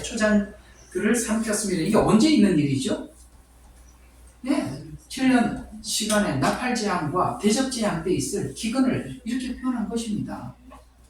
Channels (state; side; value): identical; both; correlation 1.00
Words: 초장들을 삼켰습니다. 이게 언제 있는 일이죠? 네, 7년 시간에 나팔재앙과 대접재앙 때 있을 기근을 이렇게 표현한 것입니다.